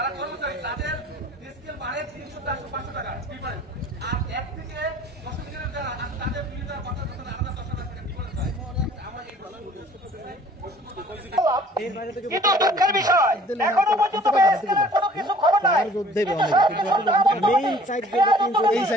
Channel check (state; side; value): normal; both; correlation 0.52